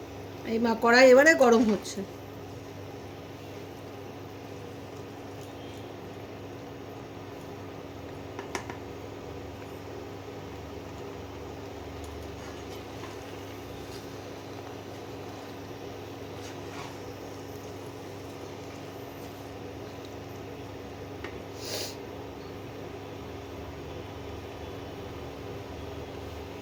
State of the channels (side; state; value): both; identical; correlation 1.00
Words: এই কড়াই এবারে গরম হচ্ছে।